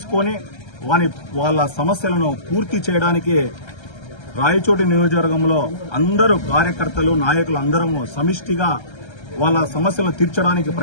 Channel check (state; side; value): late; right; 1.3 ms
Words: వాళ్ళ సమస్యలను పూర్తి చేయడానికి రాయచోటి నియోజకవర్గంలో అందరూ కార్యకర్తలు, నాయకులు అందరము సమిష్టిగా వాళ్ళ సమస్యలను తీర్చడానికి